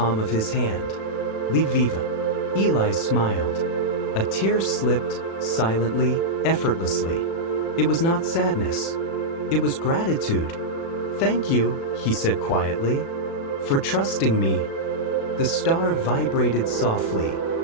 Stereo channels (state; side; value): late; right; 36 ms